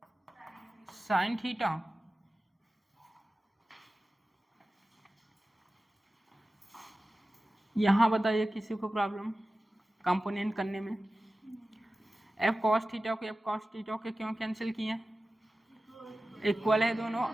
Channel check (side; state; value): both; normal; correlation 0.95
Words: sine theta यहाँ बताइए किसी को प्रॉब्लम कंपोनेंट करने में। एफ कॉस थीटा को एफ कॉस थीटा के क्यों कैंसिल किए? इक्वल है दोनों